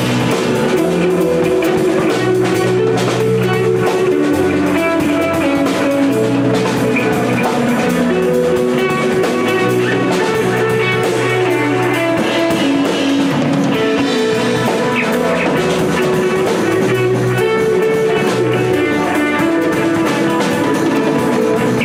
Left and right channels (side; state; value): both; identical; correlation 1.00